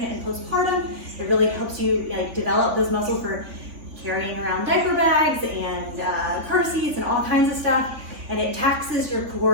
and postpartum. It really helps you develop those muscles for carrying around diaper bags and car seats and all kinds of stuff. And it taxes your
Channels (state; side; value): late; left; 3.5 ms